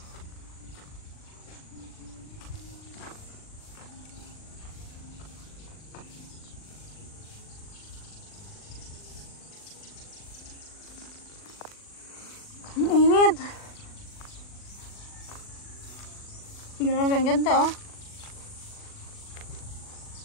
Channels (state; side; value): late; right; 40 ms